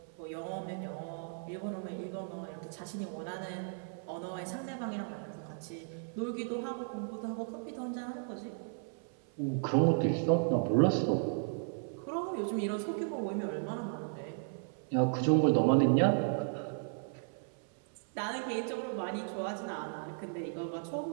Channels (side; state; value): left; silent; 54 dB below the other